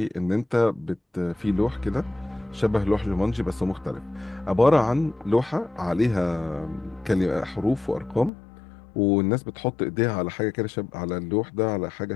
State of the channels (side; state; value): right; drops out; at 8.3 s